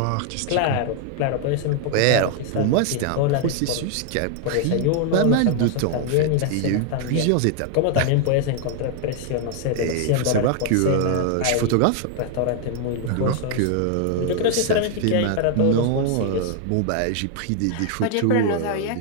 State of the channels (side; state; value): both; different; correlation 0.00